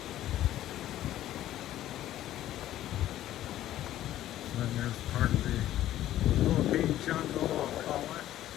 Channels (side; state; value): right; quieter; 13.2 dB